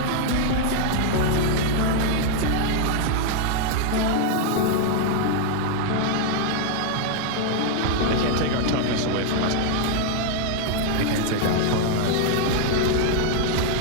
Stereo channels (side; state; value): both; different; correlation 0.00